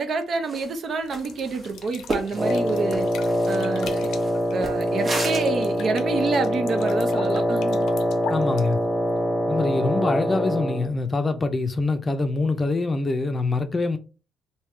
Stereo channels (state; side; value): normal; both; correlation 0.85